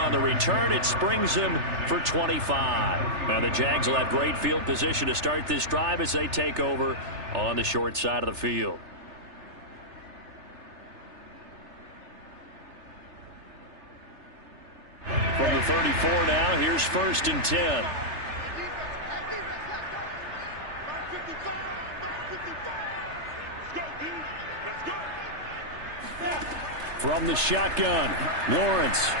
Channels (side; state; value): left; late; 3.3 ms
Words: the return. It springs him for 25. Now the Jags will have great field position to start this drive as they take over on the short side of the field. From the 34 now, here's 1st and 10. From the shotgun, Lawrence.